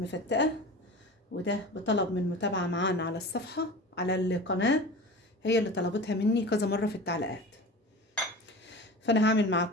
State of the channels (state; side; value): normal; both; correlation 0.34